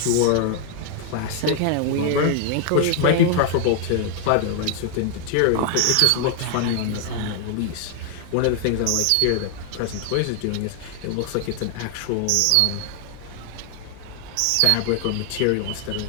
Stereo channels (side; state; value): both; different; correlation 0.00